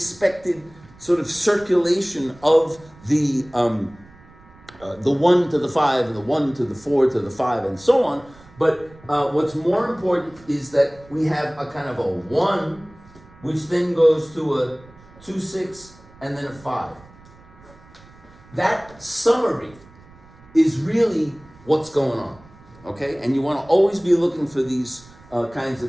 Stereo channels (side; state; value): right; noise; rumble, 24 dB below the sound